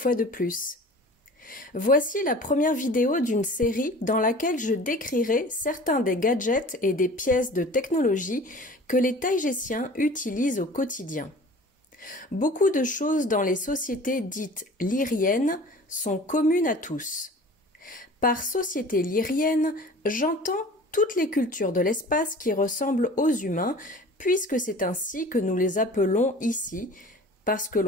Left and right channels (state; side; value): normal; both; correlation 0.43